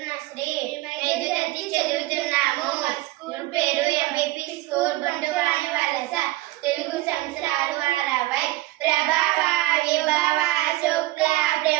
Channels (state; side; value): quieter; left; 18.1 dB